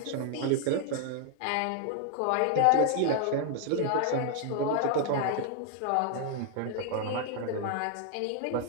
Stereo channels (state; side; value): different; both; correlation 0.00